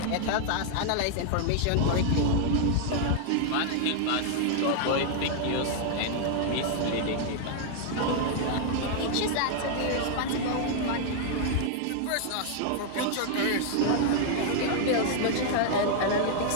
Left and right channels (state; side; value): different; both; correlation 0.00